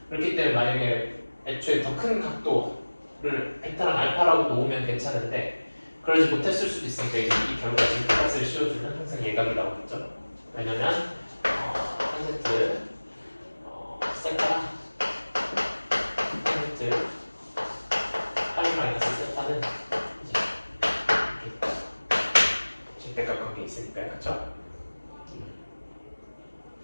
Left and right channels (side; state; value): both; inverted; correlation -1.00